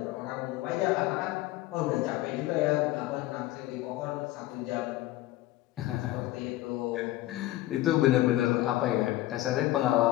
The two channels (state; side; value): quieter; right; 16.2 dB